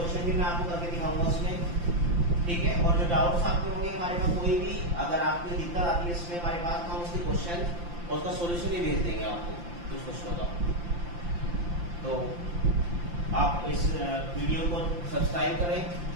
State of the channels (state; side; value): late; left; 5.8 ms